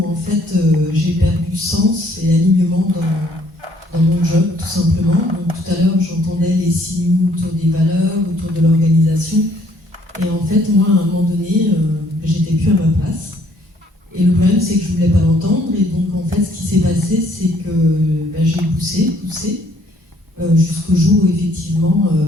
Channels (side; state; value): both; normal; correlation 0.63